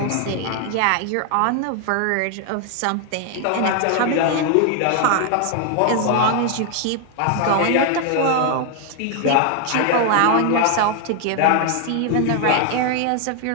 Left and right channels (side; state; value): both; different; correlation 0.00